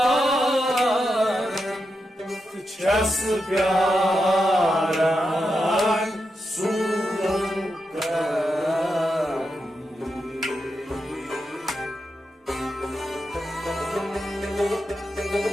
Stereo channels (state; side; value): normal; both; correlation 0.87